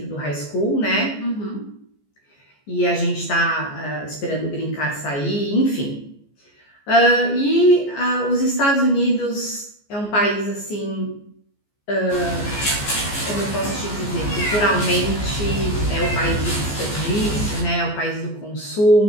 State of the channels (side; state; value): right; late; 14 ms